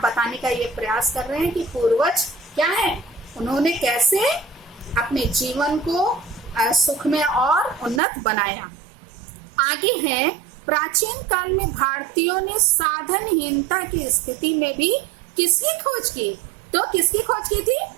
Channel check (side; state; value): left; drops out; at 8.0 s